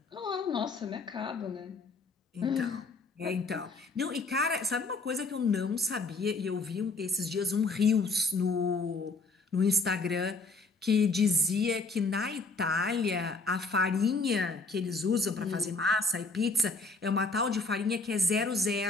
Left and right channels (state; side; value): quieter; right; 3.6 dB